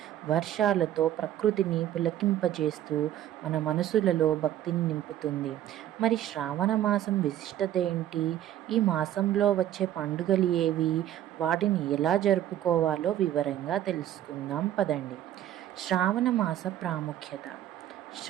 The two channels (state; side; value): quieter; left; 12.0 dB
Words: వర్షాలతో ప్రకృతిని పులకింపజేస్తూ మన మనసులలో భక్తిని నింపుతుంది. మరి శ్రావణ మాసం విశిష్టత ఏంటి? ఈ మాసంలో వచ్చే పండుగలు ఏవి? వాటిని ఎలా జరుపుకోవాలో వివరంగా తెలుసుకుందాం పదండి. శ్రావణ మాస ప్రాముఖ్యత.